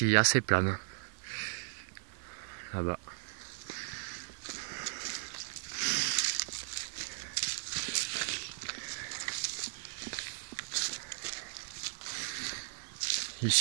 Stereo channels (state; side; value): silent; left; digital silence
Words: assez plane. Là-bas.